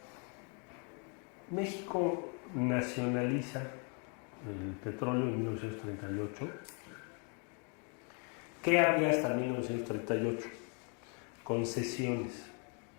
México nacionaliza el petróleo en 1938. ¿Qué había hasta 1938? Concesiones.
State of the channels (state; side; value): quieter; right; 37.5 dB